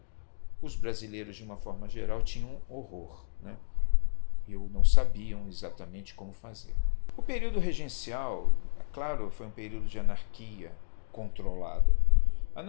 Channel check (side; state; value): right; silent; digital silence